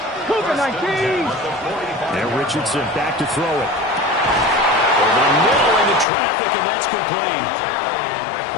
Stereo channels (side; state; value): right; drops out; at 6.1 s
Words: Cougar 19. And Richardson back to throw it. Over the middle into traffic, and that's complete.